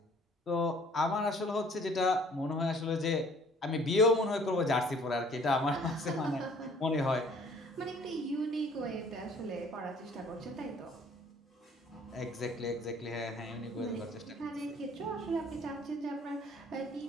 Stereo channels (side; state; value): both; normal; correlation 0.56